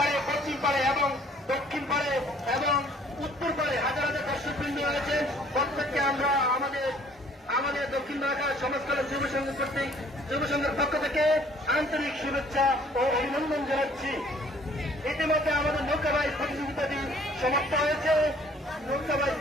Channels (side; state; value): both; normal; correlation 0.57